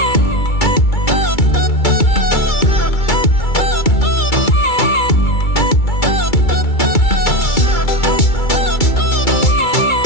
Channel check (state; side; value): late; right; 2.3 ms